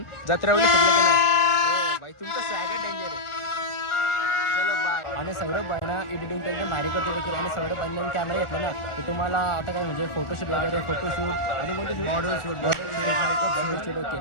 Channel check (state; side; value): late; right; 1.4 ms